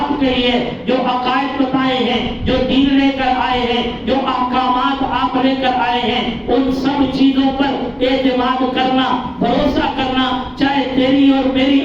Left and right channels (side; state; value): both; identical; correlation 1.00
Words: کہی ہے, جو عقائد بتائے ہیں, جو دین لے کر آئے ہیں, جو احکامات آپ لے کر آئے ہیں, ان سب چیزوں پر اعتماد کرنا, بھروسہ کرنا, چاہے تیری اور میری